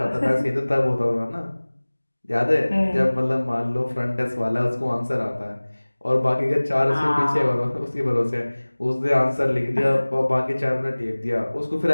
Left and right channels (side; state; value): both; inverted; correlation -1.00